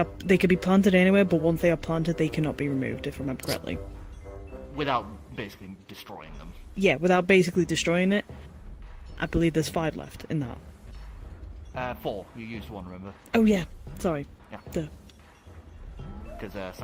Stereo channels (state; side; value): identical; both; correlation 1.00